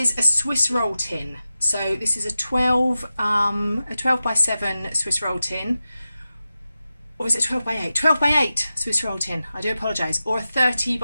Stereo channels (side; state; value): both; inverted; correlation -0.93